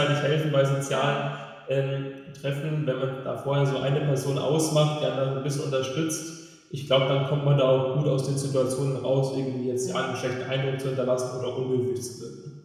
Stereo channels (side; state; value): both; identical; correlation 1.00